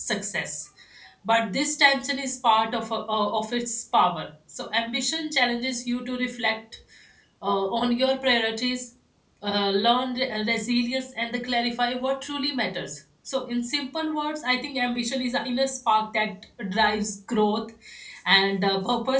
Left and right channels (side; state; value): both; identical; correlation 1.00